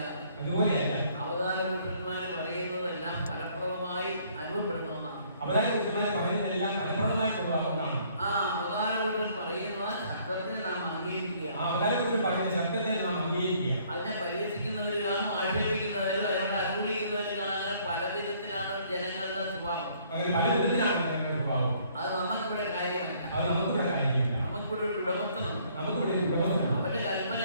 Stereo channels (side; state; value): both; inverted; correlation -0.62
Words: അവതാര പുരുഷന്മാർ പറയുന്നതെല്ലാം ഫലപ്രദമായി അനുഭവപ്പെടുന്ന ഒന്നാണ്. അവതാര പുരുഷന്മാർ പറയുന്നതെല്ലാം ഫലപ്രദമായിട്ടുള്ള ഒന്നാണ്. ആ അവതാര പുരുഷൻ പറയുന്ന ശബ്ദത്തെ നാം അംഗീകരിക്കുക. ആ അവതാര പുരുഷൻ പറയുന്ന ശബ്ദത്തെ നാം അംഗീകരിക്കുക. അതിനെ പരിഹസിക്കുന്നവർ കാണും, ആക്ഷേപിക്കുന്നവരും അതിനോട് അനുകൂലിക്കുന്നവർ കാണാൻ പല വിധത്തിലാണ് ജനങ്ങളുടെ സ്വഭാവം. അങ്ങനെ പല വിധത്തിലാണ് ജനങ്ങളുടെ സ്വഭാവം. അത് നമുക്കിവിടെ കാര്യമല്ല, അത് നമുക്കിവിടെ കാര്യമല്ല. നമുക്കിവിടെ ഒരു ഉടമസ്ഥനുണ്ട്, നമുക്കിവിടെ ഒരു ഉടമസ്ഥനുണ്ട്. അവന്റെ